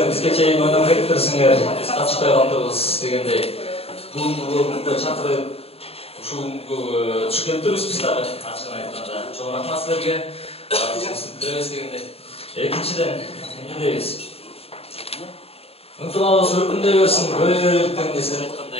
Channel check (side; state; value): right; late; 0.29 ms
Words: Бизге чейин ойноп кетиптирсиңер, биз катышпай калдыбыз дегендей. Бүгүнкү чакырып ушул түшкөнбүз биз дагы ачыгын айтканда. Чоң рахмат силерге. Билебиз дегендей. Экинчиден эмне дейбиз? Ынтымагыбыз өркүндөй берсин, көйгөйлүктөн десем